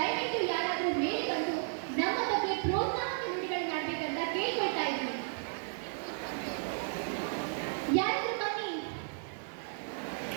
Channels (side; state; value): left; silent; digital silence